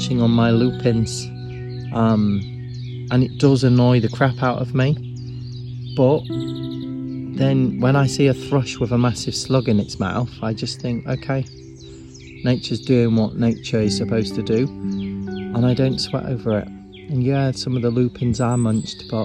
on my lupins, and it does annoy the crap out of me, but then when I see a thrush with a massive slug in its mouth, I just think, okay, nature's doing what nature is supposed to do, and I don't sweat over it. And yeah, some of the lupins are munched, but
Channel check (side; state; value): both; identical; correlation 1.00